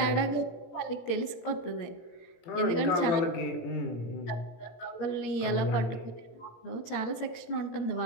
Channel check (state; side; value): late; right; 17 ms